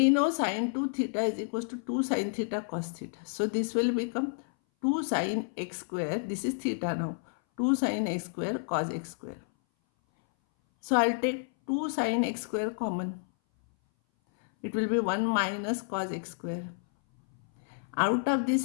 know sine 2 theta is equals to 2 sine theta cos theta. So this will become 2 sine x square. This is theta now. 2 sine x square cos x square. So I'll take 2 sine x square common. It will be 1 minus cos x square. Out of this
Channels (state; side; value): silent; right; 58 dB below the other